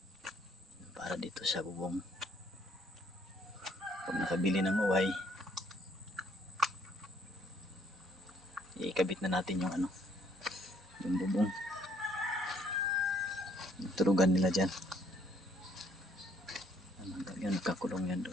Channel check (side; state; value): both; normal; correlation 0.65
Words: para dito sa bubong. Pag nakabili ng uway, ikabit na natin yung yung bubong. Turugan nila dyan. Yan, nagkakulong yan